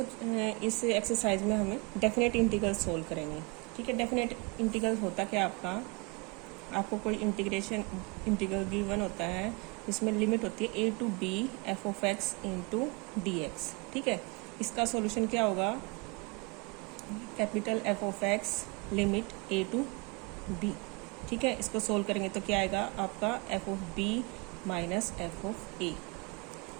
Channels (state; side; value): quieter; left; 27.8 dB